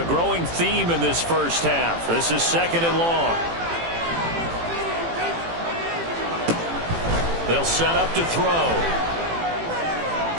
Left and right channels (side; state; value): left; late; 18 ms